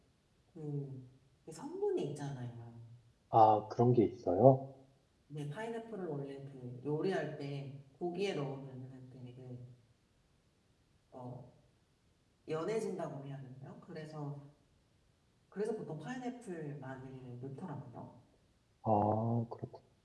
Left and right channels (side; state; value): both; identical; correlation 1.00